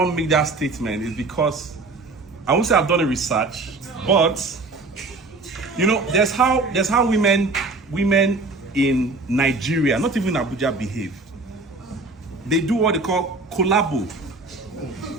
make that statement? Is because I won't say I've done a research, but you know, there's how women in Nigeria, not even Abuja, behave. They do what they call collabo.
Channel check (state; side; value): quieter; left; 3.4 dB